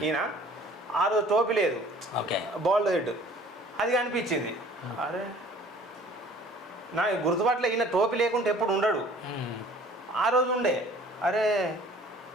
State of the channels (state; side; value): normal; both; correlation 0.51